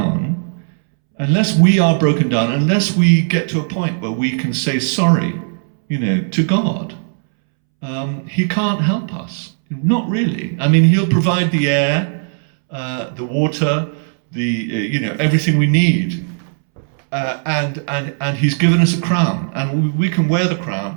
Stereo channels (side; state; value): left; silent; 67 dB below the other